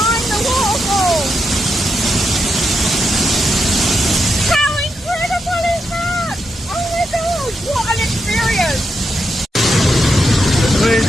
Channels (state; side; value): normal; both; correlation 0.84